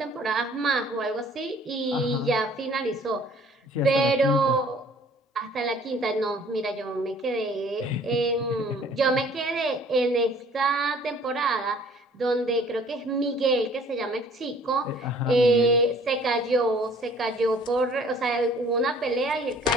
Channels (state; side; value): normal; both; correlation 0.54